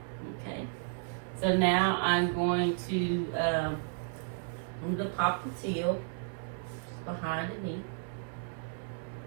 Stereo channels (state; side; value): silent; left; 56 dB below the other